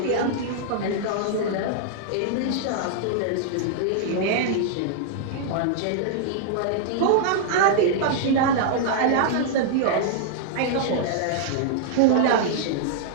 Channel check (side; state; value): both; different; correlation -0.01